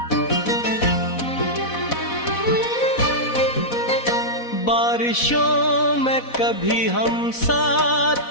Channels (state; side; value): late; right; 4.1 ms